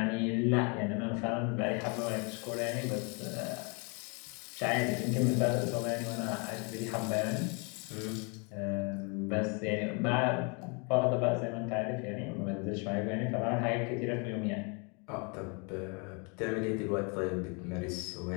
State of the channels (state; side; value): quieter; right; 33.8 dB